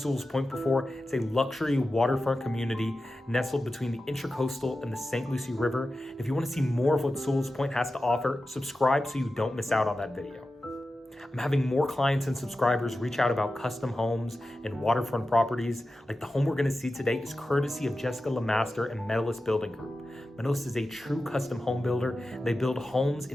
Point before, it's a luxury waterfront community nestled between the Intracoastal and the St. Lucie River. And if you want to see more of what Sewall's Point has to offer, subscribe so you don't miss out on that video. I'm having more clients and subscribers reach out about custom homes and waterfront properties. Like the home we're going to see today is courtesy of Jessica Lemaster and Medalist Building Group. Medalist is a true custom home builder. They build homes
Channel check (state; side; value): normal; both; correlation 0.93